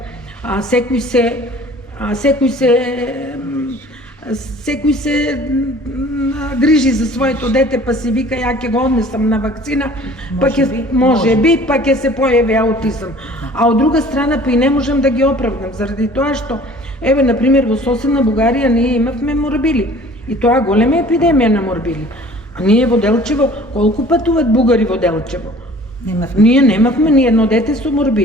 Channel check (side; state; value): both; normal; correlation 0.49